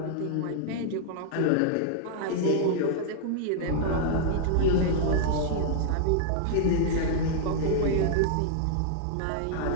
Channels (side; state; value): both; different; correlation -0.01